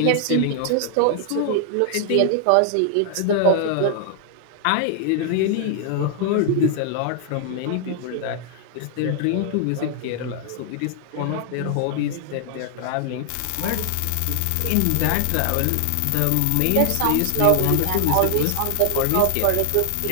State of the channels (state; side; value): different; both; correlation 0.00